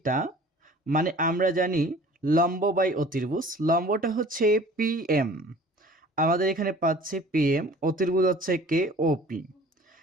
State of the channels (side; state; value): both; normal; correlation 0.47